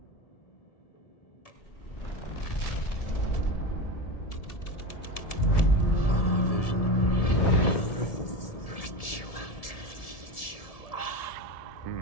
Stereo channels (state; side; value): late; right; 1.7 ms